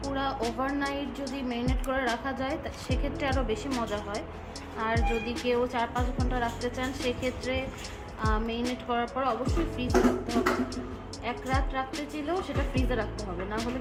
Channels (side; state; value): both; identical; correlation 1.00